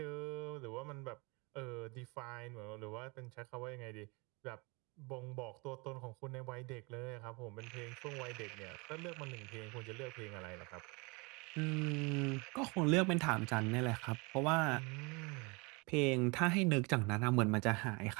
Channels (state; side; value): quieter; left; 28.4 dB